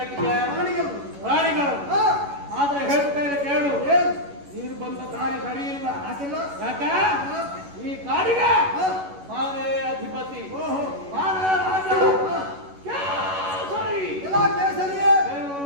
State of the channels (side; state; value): left; late; 11 ms